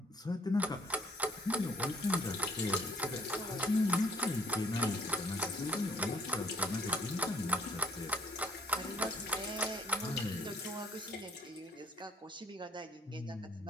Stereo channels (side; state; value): both; normal; correlation 0.62